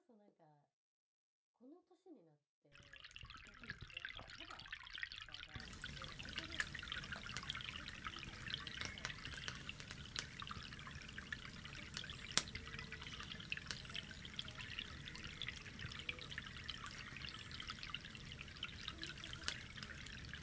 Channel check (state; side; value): identical; both; correlation 1.00